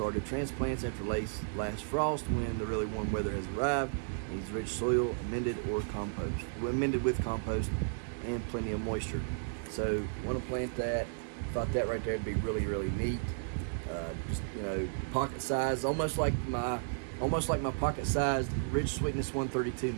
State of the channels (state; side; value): silent; left; digital silence